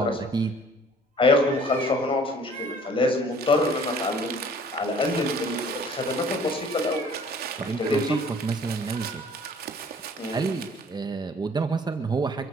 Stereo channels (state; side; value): normal; both; correlation 0.54